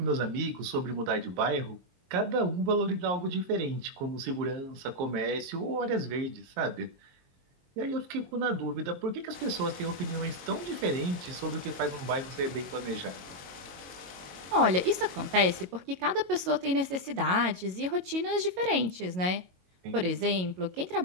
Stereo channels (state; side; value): late; left; 22 ms